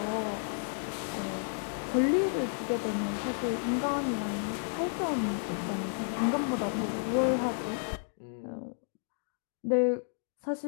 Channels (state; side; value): silent; right; digital silence